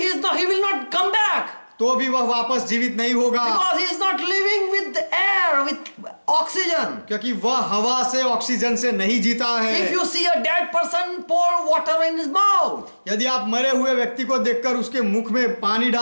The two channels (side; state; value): both; inverted; correlation -1.00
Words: not come back. तो भी वह वापस जीवित नहीं होगा, Because he is not living with air, with oxygen. क्योंकि वह हवा से, ऑक्सीजन से नहीं जीता है। If you see a dead person, pour water in his mouth. यदि आप मरे हुए व्यक्ति को देखकर उसके मुख में पानी